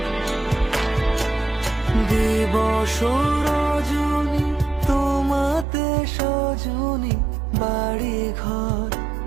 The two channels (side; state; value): left; drops out; at 5.7 s